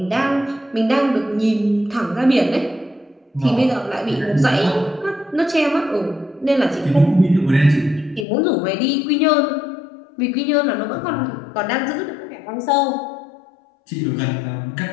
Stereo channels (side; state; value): right; drops out; at 8.2 s